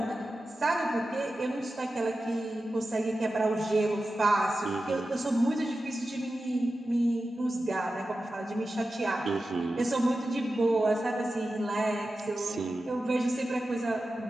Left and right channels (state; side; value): normal; both; correlation 0.93